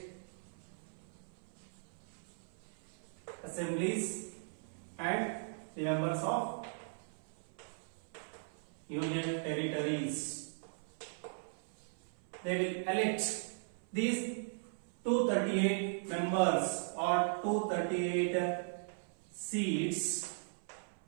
assemblies and the members of union territories. They will elect these 238 members or 238 seats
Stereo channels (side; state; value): left; silent; 52 dB below the other